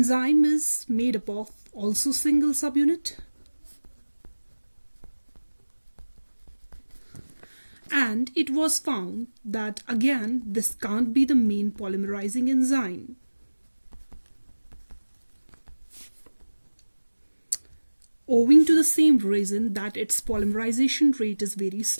is made up of also single subunit, and it was found that again this can't be the main polymerizing enzyme. Owing to the same reason that its polymerization rate is very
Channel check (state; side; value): inverted; both; correlation -1.00